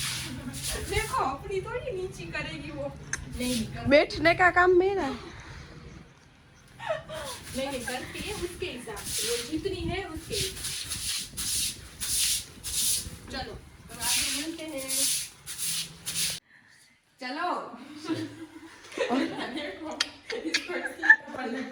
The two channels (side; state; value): both; identical; correlation 1.00